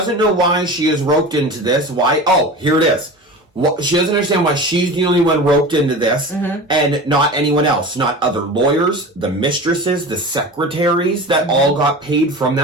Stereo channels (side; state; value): both; normal; correlation 0.33